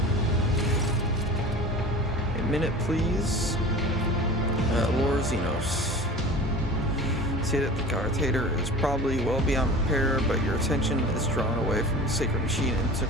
A minute, please. Lord Xenos. See that the Guardator is probably well beyond repair, but your attention is drawn away from the sacred machine and took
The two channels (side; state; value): both; normal; correlation 0.37